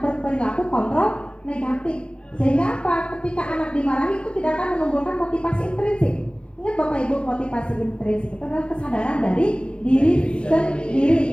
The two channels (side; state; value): right; late; 0.058 ms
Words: kontrol negatif. Sehingga apa? Ketika anak dimarahi itu tidak akan menumbuhkan motivasi intrinsik. Ingat Bapak Ibu, motivasi intrinsik itu adalah kesadaran dari diri